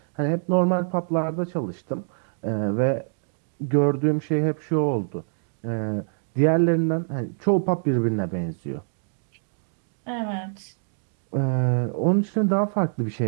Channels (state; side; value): silent; left; digital silence